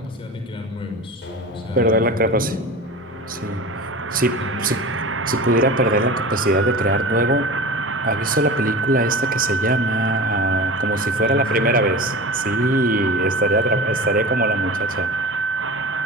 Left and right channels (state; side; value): normal; both; correlation 0.32